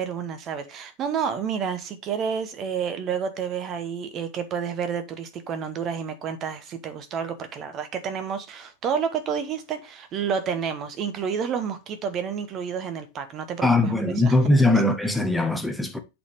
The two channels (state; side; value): normal; both; correlation 0.57